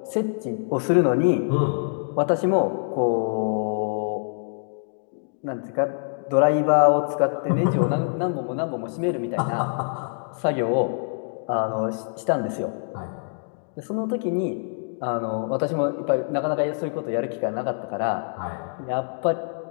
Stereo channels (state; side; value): silent; right; digital silence